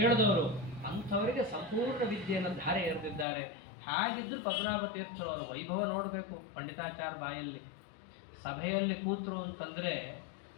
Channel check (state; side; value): drops out; right; at 3.2 s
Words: ಅಂಥವರಿಗೆ ಸಂಪೂರ್ಣ ವಿದ್ಯೆಯನ್ನು ಧಾರೆ ಎರೆದಿದ್ದಾರೆ. ಹಾಗಿದ್ರು ಪದ್ಮನಾಭ ತೀರ್ಥರವರ ವೈಭವ ನೋಡಬೇಕು. ಪಂಡಿತಾಚಾರ್ಯ ಬಾಯಲ್ಲಿ ಸಭೆಯಲ್ಲಿ ಕೂತರು ಅಂತಂದ್ರೆ,